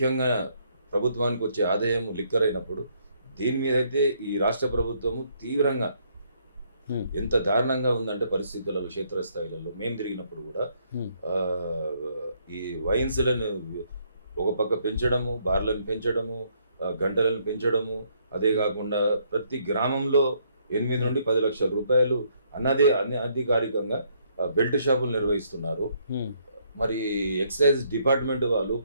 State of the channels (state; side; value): inverted; both; correlation -0.70